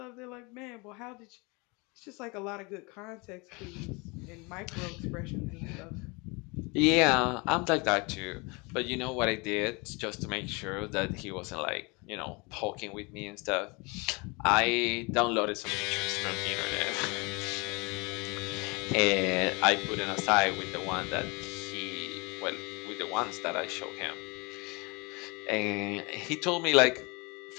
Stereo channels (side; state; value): right; quieter; 28.1 dB